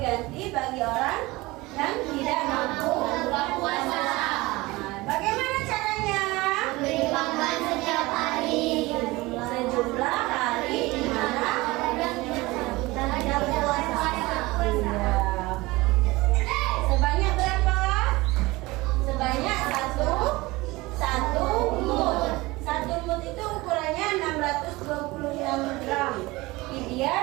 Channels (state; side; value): quieter; left; 21.2 dB